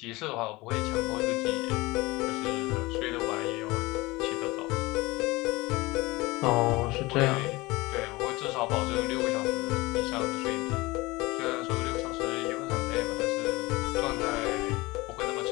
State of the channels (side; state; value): right; quieter; 21.8 dB